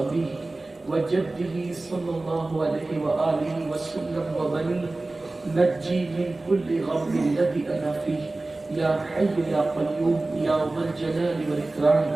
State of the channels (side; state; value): left; quieter; 3.1 dB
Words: وجده صلى الله عليه وآله وسلم وبنيه نجي من كل غم الذي أنا فيه يا حي يا قيوم يا ذا الجلال